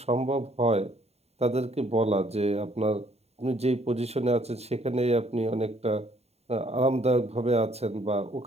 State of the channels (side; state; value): left; late; 0.30 ms